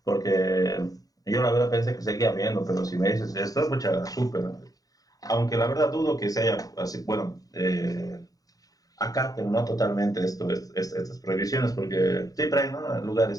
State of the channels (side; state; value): right; late; 0.18 ms